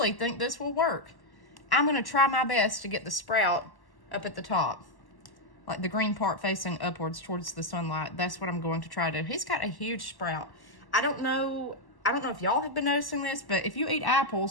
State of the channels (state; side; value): late; right; 1.1 ms